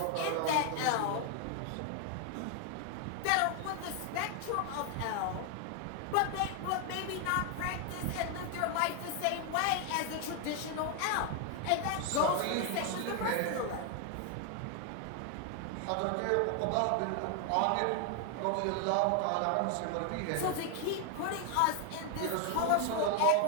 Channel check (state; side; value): different; both; correlation 0.00